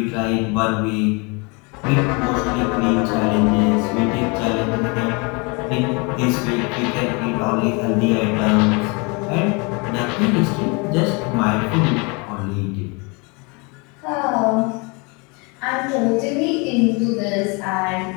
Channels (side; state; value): right; quieter; 30.1 dB